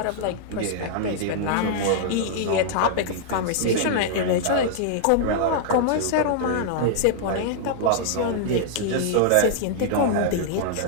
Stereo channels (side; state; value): both; different; correlation -0.01